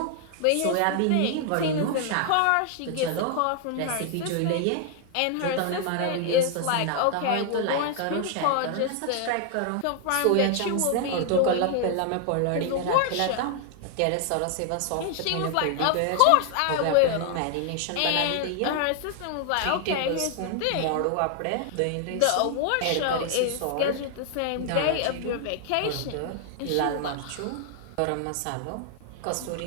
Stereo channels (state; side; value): different; both; correlation 0.00